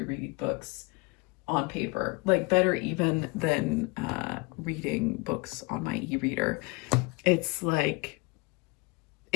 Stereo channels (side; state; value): right; quieter; 26.9 dB